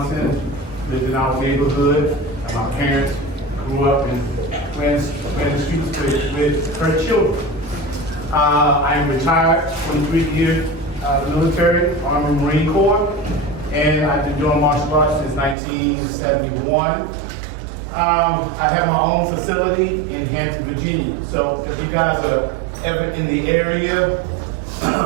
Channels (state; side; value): drops out; left; at 15.6 s